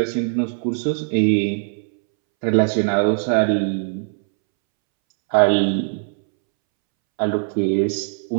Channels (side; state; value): left; silent; 65 dB below the other